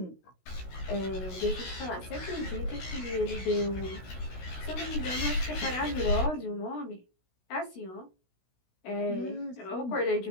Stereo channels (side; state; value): right; late; 16 ms